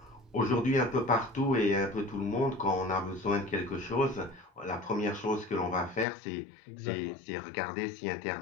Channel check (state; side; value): drops out; right; at 6.1 s